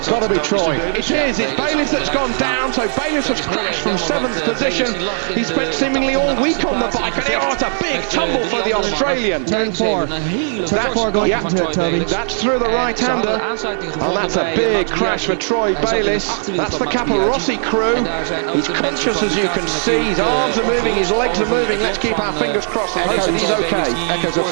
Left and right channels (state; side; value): silent; left; 66 dB below the other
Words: got to be Troy. It is. It's Bayliss that's gone down. So Bayliss has crashed from 7th position. He spent seemingly all week on the bike, and it's a big tumble for the Australian. Turn 4. Turn 4 going into it, Toby. That's through the right-hander, and that's a big crash for Troy Bayliss. That's the Rossi crew. He's conscious, as you can see. His arms are moving, his legs are moving. Let's keep our fingers crossed and hope that he's okay. Echoes of